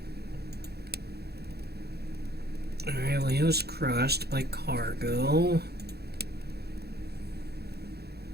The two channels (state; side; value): late; left; 0.47 ms